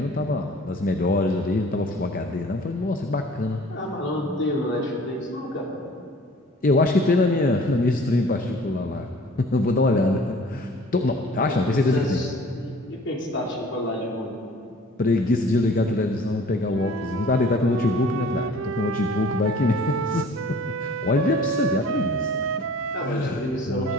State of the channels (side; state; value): both; normal; correlation 0.49